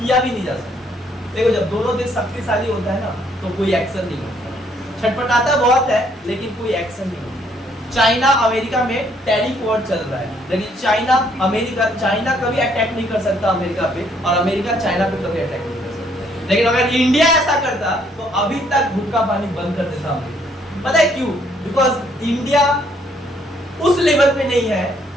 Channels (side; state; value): both; normal; correlation 0.67